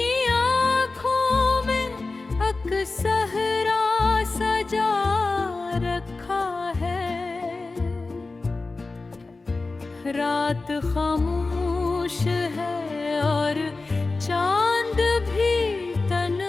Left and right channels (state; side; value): quieter; right; 3.6 dB